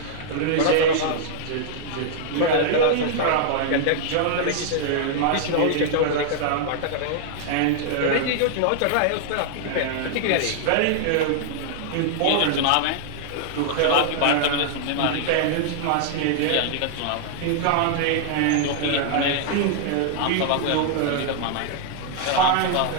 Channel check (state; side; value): different; both; correlation -0.01